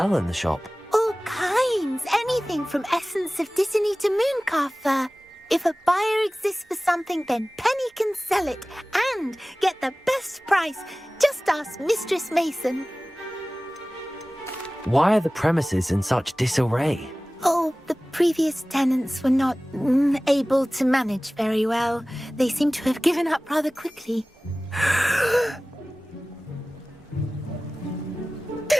in the shop? All kinds. Anything from essence of Disney to mooncalf fur. If a buyer exists for something, then Penny can sell it and get the best price. Just ask Mistress Mason. Why are the premises in such disarray? Oh, the previous tenants were not able to manage very well. They seem to have given up rather quickly.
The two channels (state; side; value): normal; both; correlation 0.98